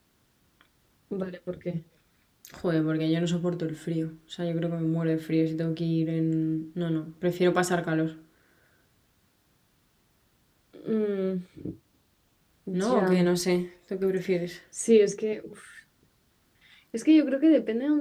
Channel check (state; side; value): identical; both; correlation 1.00